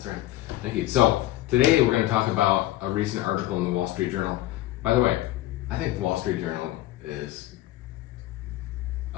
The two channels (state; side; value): quieter; right; 15.4 dB